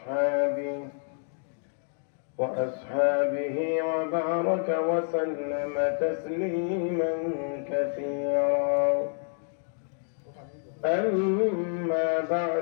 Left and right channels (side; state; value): right; silent; 59 dB below the other